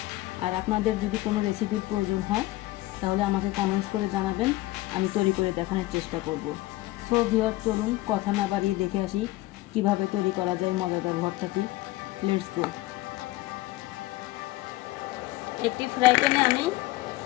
আর আপনাদের যদি কোনো রেসিপির প্রয়োজন হয় তাহলে আমাকে কমেন্টস করে জানাবেন, আমি তৈরি করে দেখানোর চেষ্টা করব। সো ভিউয়ার, চলুন কথা না বাড়িয়ে দেখে আসি কিভাবে তৈরি করা যায় মজাদার ভর্তাটি। Let's go. একটি ফ্রাই প্যানে আমি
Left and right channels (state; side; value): quieter; right; 18.3 dB